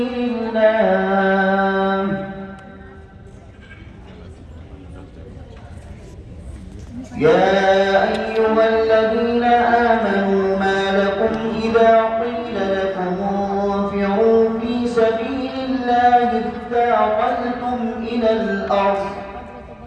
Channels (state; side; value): identical; both; correlation 1.00